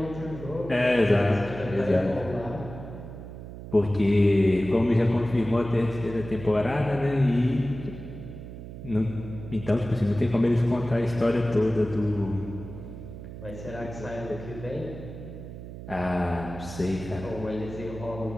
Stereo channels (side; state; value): right; noise; hum, 12 dB below the sound